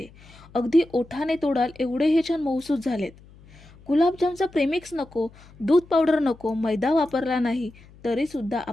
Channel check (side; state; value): left; noise; hum, 24 dB below the sound